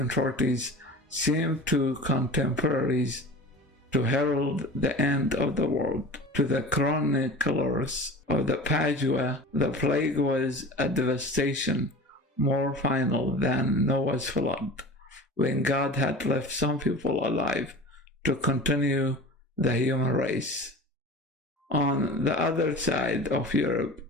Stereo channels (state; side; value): normal; both; correlation 0.36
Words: seemed to contemporaries to herald the end of the world. To the chroniclers of the Padua, the plague was a devastation more final than Noah's flood, when God had left some people alive to continue the human race. On the other side of Europe,